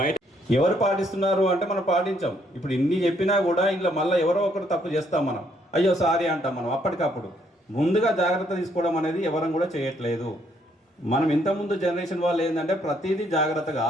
ఎవరు పాటిస్తున్నారు అంటే మనం పాటించాం. ఇప్పుడు ఇన్ని చెప్పినా కూడా ఇంట్లో మళ్ళీ ఎవరో ఒకరు తప్పు చేస్తాం, మనం అయ్యో సారీ అంటాం. మనం అప్పటికప్పుడు ముందుగా జాగ్రత్త తీసుకోవడం అనేది ఎవరం కూడా చేయట్లేదు. మనం ఇంతకుముందు జనరేషన్ వాళ్ళు ఏంటంటే ప్రతిదీ జాగ్రత్తగా,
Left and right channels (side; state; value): both; normal; correlation 0.70